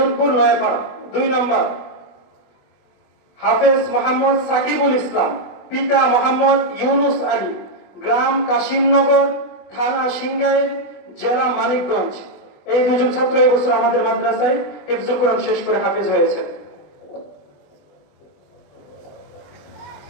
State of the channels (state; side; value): late; right; 20 ms